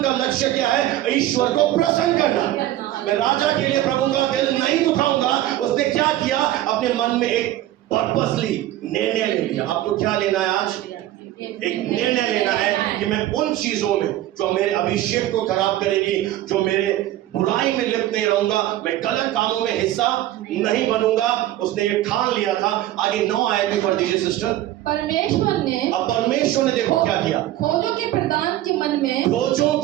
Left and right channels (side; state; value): left; quieter; 14.1 dB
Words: का लक्ष्य क्या है? ईश्वर को प्रसन्न करना। मैं राजा के लिए प्रभु का दिल नहीं दुखाऊंगा। उसने क्या किया, अपने मन में एक पर्पसली निर्णय ले लिया। आपको क्या लेना है आज? एक निर्णय लेना है कि मैं उन चीजों में जो मेरे अभिषेक को खराब करेगी, जो मेरे बुराई में लिप्त नहीं रहूंगा, मैं गलत कामों में हिस्सा नहीं बनूंगा। उसने ये ठान लिया था। आगे 9 आयत भी पढ़ दीजिए सिस्टर। परमेश्वर ने अब परमेश्वर ने देखो क्या किया, खोजों के प्रधान के मन में, खोजों